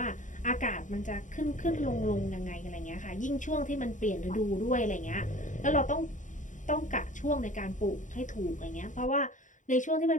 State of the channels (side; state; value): right; late; 0.36 ms